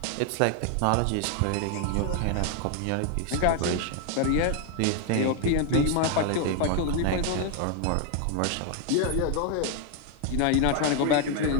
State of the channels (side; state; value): both; different; correlation 0.01